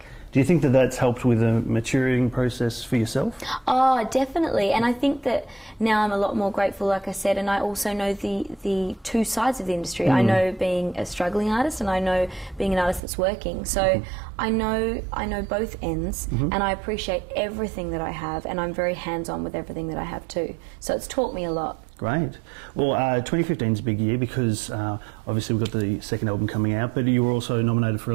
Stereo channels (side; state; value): left; drops out; at 13.0 s